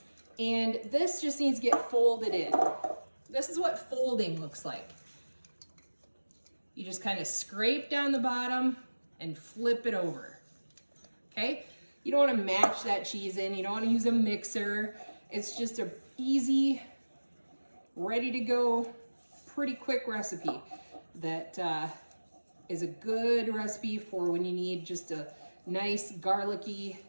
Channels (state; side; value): inverted; both; correlation -1.00